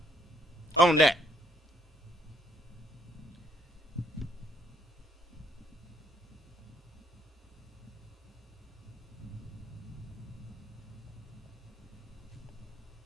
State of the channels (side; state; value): both; normal; correlation 0.68